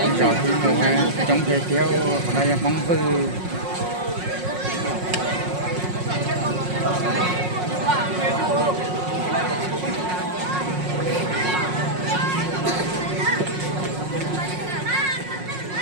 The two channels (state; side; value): late; left; 5.5 ms